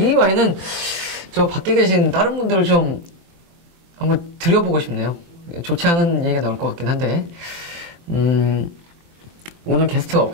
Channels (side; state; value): left; late; 23 ms